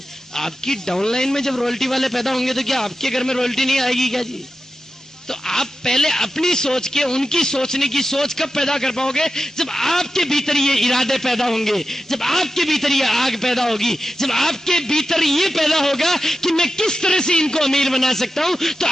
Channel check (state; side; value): normal; both; correlation 0.91